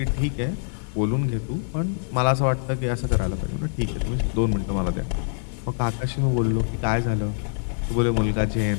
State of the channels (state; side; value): silent; right; 62 dB below the other